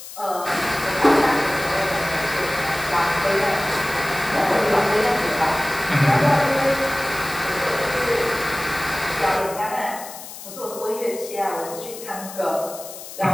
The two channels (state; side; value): noise; left; hiss, 13 dB below the sound